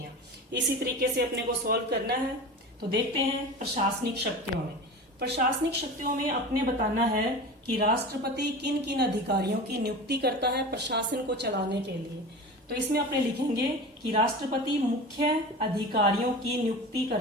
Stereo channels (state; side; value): normal; both; correlation 0.32